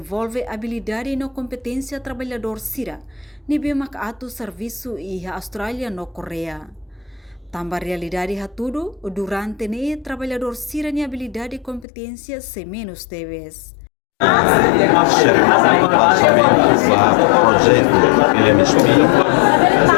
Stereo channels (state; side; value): drops out; right; at 11.9 s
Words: habilidade e competência trabalhador Sira, nibe atu serviço e a Austrália no Coreia. Tambah realidade tudo, durante trabalhador Sira ni habilidade e competência se menos TEBES. Cerimônia lançamento do projeto PMSP